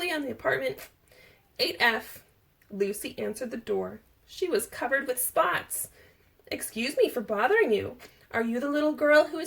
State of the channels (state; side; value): identical; both; correlation 1.00